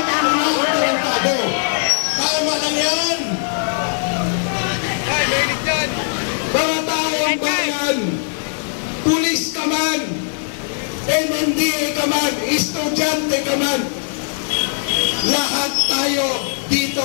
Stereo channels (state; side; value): silent; right; 58 dB below the other